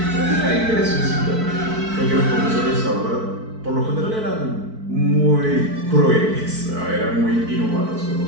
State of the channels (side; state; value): left; late; 4.6 ms